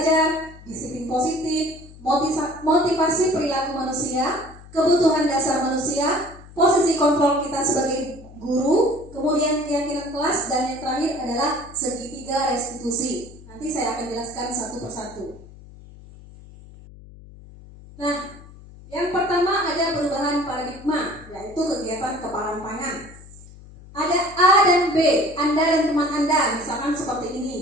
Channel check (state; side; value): noise; left; hum, 19 dB below the sound